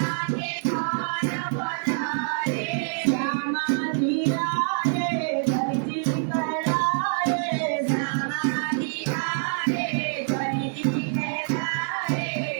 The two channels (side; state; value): left; silent; digital silence